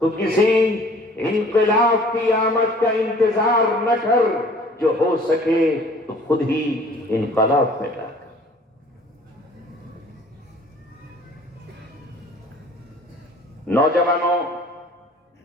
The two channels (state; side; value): normal; both; correlation 0.52